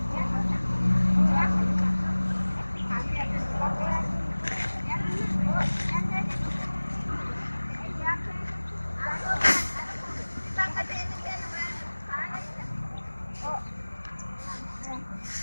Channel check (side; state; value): both; inverted; correlation -1.00